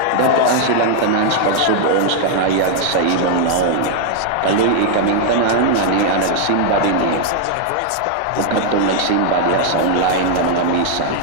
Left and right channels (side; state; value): both; different; correlation 0.00